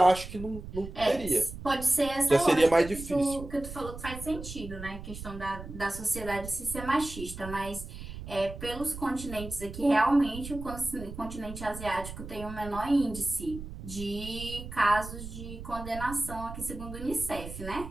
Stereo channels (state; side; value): noise; right; rumble, 11 dB below the sound